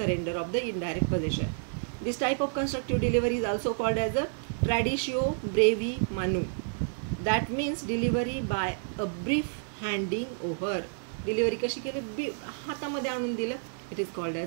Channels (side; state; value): left; silent; digital silence